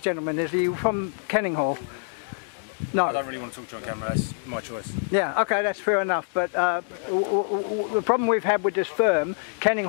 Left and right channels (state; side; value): silent; right; 61 dB below the other